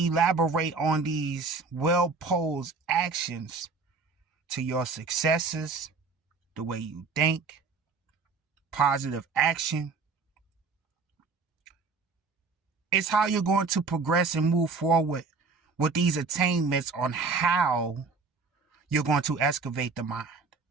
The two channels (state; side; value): quieter; left; 4.5 dB